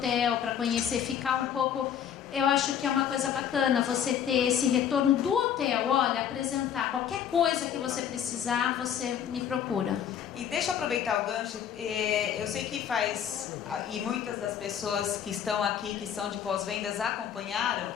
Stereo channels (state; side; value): quieter; right; 9.0 dB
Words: para conhecer, ficar um pouco... Eu acho que é uma coisa bacana você ter esse retorno do hotel. Olha, apresentar qualquer coisa que você precisar, você me procura. E deixa eu aproveitar o gancho. Eu sei que e muitas das pessoas que estão aqui, que são de pós-vendas, acompanharam.